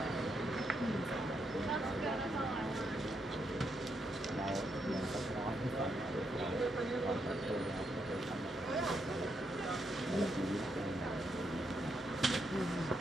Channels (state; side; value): normal; both; correlation 0.79